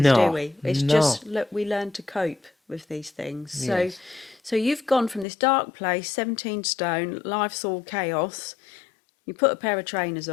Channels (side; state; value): right; drops out; at 5.2 s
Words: do No, we? It's no. just look, we learn to cope with these things. So, Yes. so you've gone from this dark place, 17 stone, life's all chaos. You put a pair of trainers